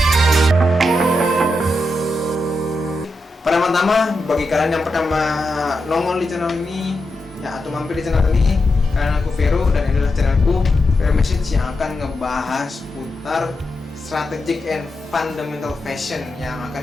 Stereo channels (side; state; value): both; normal; correlation 0.87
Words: Pertama-tama, bagi kalian yang pertama nongol di channel ini ya, atau mampir di channel ini, karena aku Vero dan ini adalah channelku Vero Message yang akan ngebahas putar strategic and fundamental fashion yang